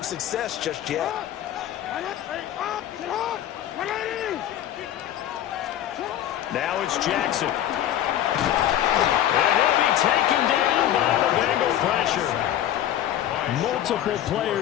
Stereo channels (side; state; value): right; quieter; 11.8 dB